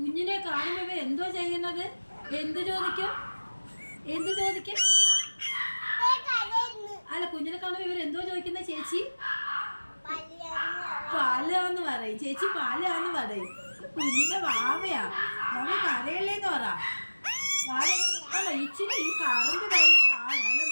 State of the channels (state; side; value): inverted; both; correlation -1.00